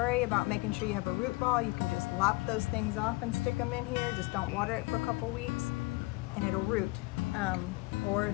about making sure you have a root ball. You can just lop those things off and stick them in here. Just don't water it for a couple weeks and it'll root. Or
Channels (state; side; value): quieter; right; 23.7 dB